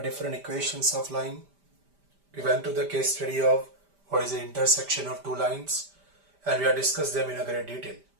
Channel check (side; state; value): left; late; 5.1 ms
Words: equations of line. We went to the case study of what is the intersection of two lines and we have discussed them in a great detail.